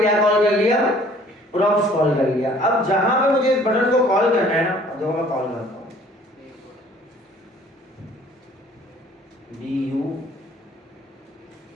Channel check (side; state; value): both; normal; correlation 0.55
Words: कॉल कर लिया? प्रॉप्स कॉल कर लिया। अब जहां पे मुझे इस बटन को कॉल करना है ना, अब देखो मैं कॉल करता हूँ BUDDON,